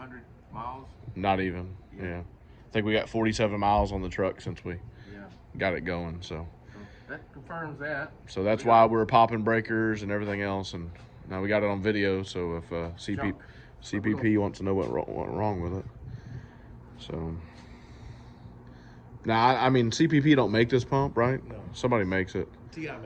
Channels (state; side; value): identical; both; correlation 1.00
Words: miles. Not even. Yeah. I think we got 47 miles on the truck since we got it going. So that confirms that. So that's why we're popping breakers and everything else, and now we got it on video. So if CPP wants to know what went wrong with it, so now I mean CPP don't make this pump, right? No. Somebody makes it. TI